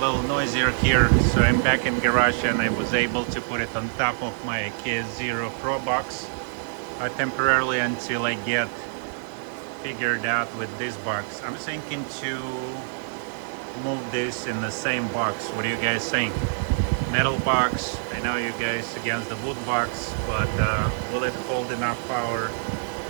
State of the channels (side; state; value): left; silent; digital silence